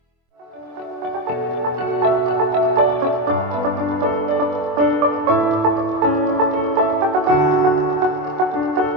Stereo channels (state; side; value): late; left; 24 ms